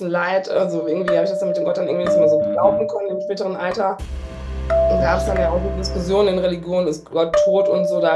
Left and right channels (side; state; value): both; identical; correlation 1.00